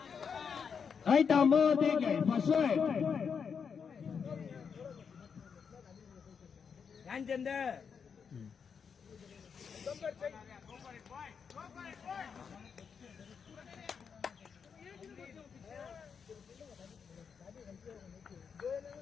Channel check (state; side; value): quieter; right; 6.4 dB